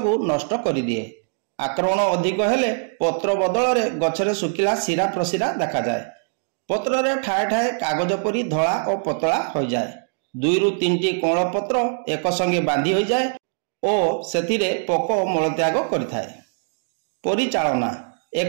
को नष्ट कर दिए। आक्रमण अधिक हेले पत्र बदल में गचरे सुखिला शिरा प्रशिरा देखा जाए। पत्र रे ठाए ठाए कागज परी धला और पतला हो जाए। 2 ରୁ 3टी कोण पत्र एक संगे बांधी हो जाए और सेथिरे पोक मलत्याग करिथाए। परिचालना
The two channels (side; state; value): left; silent; digital silence